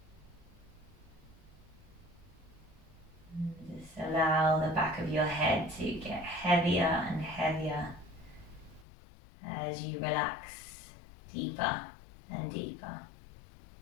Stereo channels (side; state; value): right; drops out; at 8.8 s